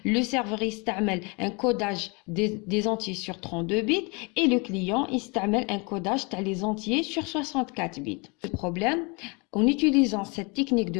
Le serveur استعمل un codage des entiers sur 32 bits et le client استعمل un codage des entiers sur 64 bits. Le problème, en utilisant cette technique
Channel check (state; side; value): quieter; right; 30.2 dB